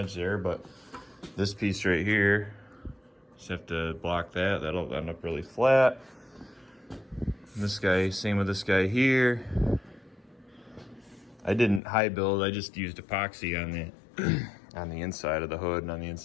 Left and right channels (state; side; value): drops out; right; at 11.8 s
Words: there. But this piece right here, just have to block that. That'll end up really flat. This guy, same with this guy here. I didn't high build. I just used epoxy on the on the inside of the hood and on the